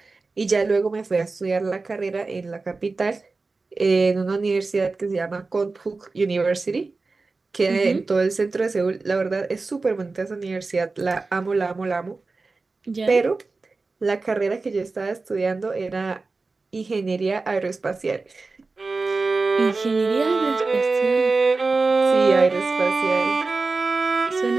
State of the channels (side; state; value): left; quieter; 3.8 dB